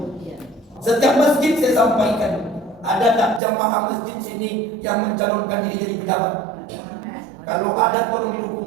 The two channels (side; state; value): left; drops out; at 3.4 s